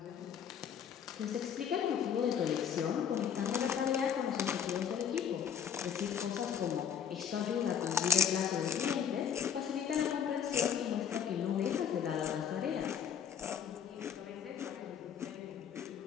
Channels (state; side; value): quieter; right; 8.2 dB